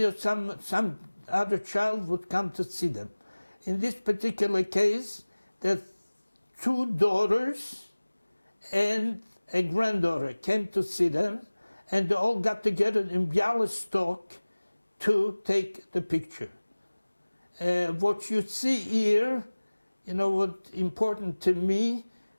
some other child would come to see them. In this particular case, the 2 daughters and a granddaughter came to see them, and they all got together in Bialystok to take the picture. What you see here, what's important to me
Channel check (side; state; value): both; inverted; correlation -1.00